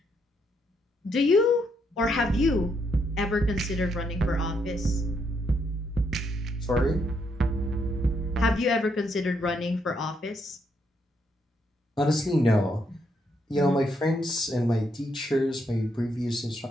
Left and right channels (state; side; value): normal; both; correlation 0.76